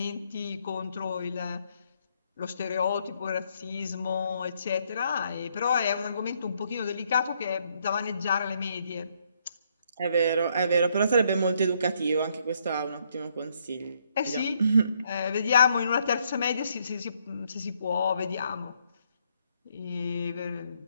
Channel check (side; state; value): both; inverted; correlation -0.72